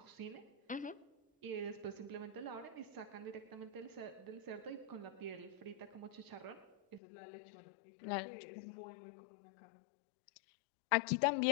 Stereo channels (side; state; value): right; drops out; at 7.0 s